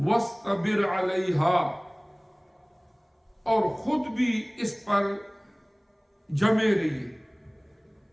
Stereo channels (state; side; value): identical; both; correlation 1.00